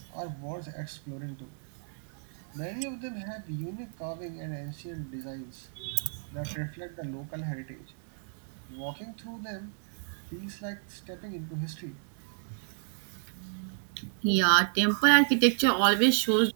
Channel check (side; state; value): left; silent; digital silence